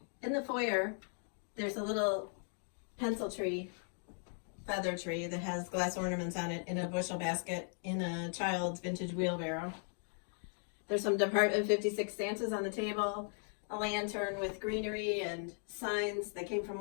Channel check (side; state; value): right; silent; 53 dB below the other